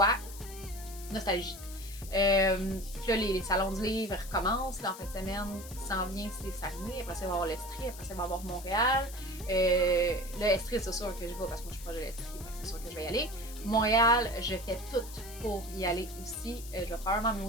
nostalgie. Puis là, les salons du livre recommencent. Là, en fin de semaine, qui s'en vient, c'est Saguenay. Après ça, il va y avoir l'Estrie. Après ça, il va y avoir Montréal. Là, Estrie, c'est sûr que je vais parce que moi, je suis proche de l'Estrie. C'est sûr que je vais y aller. Montréal, je fais tout pour y aller aussi. Je vais probablement me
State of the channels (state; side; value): noise; left; hiss, 15 dB below the sound